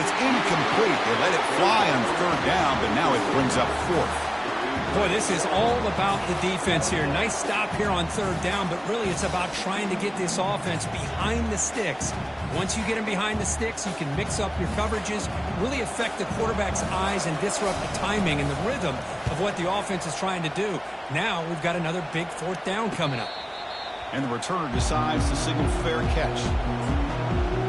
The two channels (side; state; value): both; identical; correlation 1.00